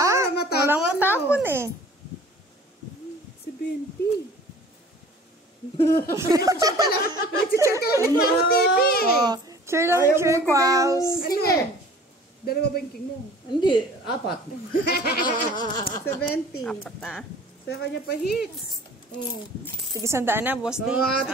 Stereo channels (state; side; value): normal; both; correlation 0.47